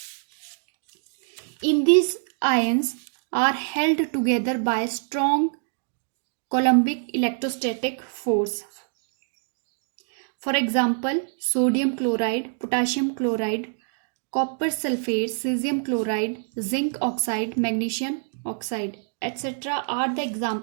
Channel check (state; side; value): silent; left; digital silence